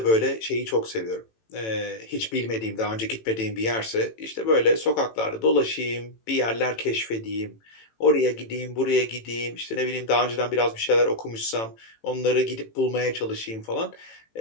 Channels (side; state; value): right; late; 18 ms